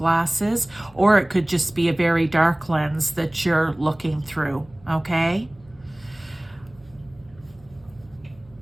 or it could just be a very dark lens that you're looking through, okay?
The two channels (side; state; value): right; noise; hum, 27 dB below the sound